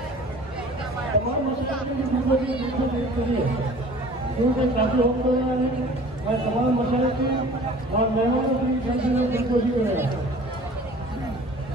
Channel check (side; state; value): both; normal; correlation 0.46